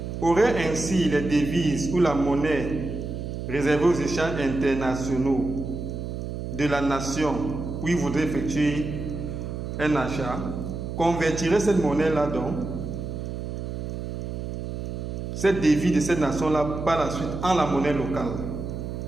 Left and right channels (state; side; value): noise; right; hum, 6 dB below the sound